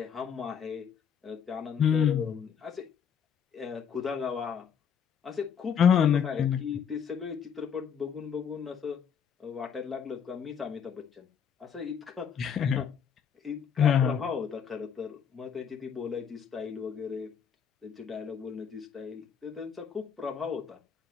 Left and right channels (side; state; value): right; quieter; 7.4 dB